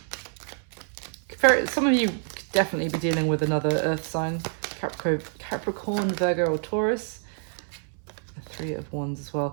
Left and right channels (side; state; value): left; silent; 60 dB below the other